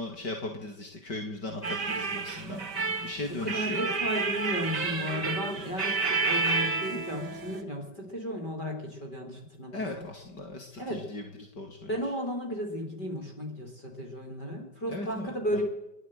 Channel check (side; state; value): right; late; 5.2 ms